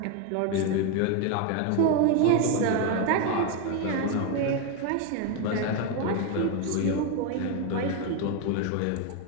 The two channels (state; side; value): different; both; correlation 0.01